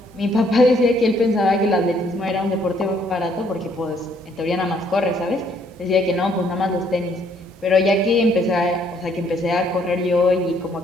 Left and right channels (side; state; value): both; normal; correlation 0.66